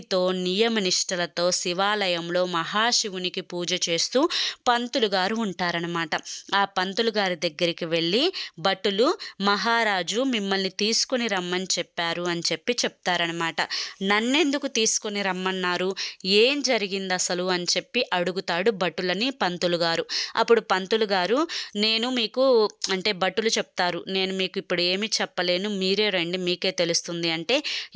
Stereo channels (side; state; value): both; identical; correlation 1.00